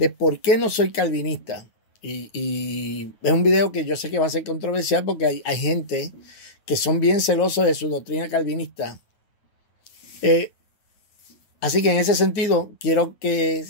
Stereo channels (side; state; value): right; late; 9.2 ms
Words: por qué no soy calvinista. Y es un video que yo sé que va a ser controversial porque hay gente que son bien celosos de su doctrina calvinista. Así que en ese sentido quiero que